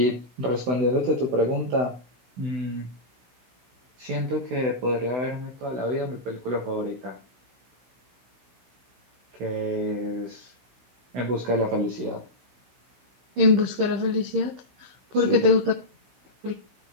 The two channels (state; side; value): late; left; 16 ms